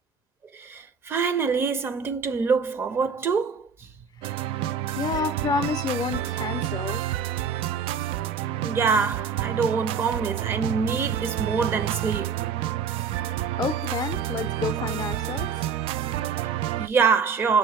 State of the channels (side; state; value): left; quieter; 5.2 dB